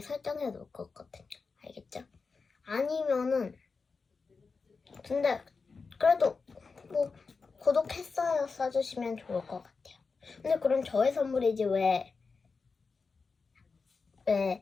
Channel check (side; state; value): right; quieter; 4.7 dB